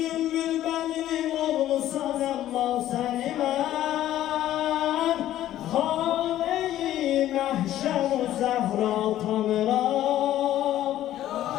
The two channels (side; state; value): right; quieter; 13.0 dB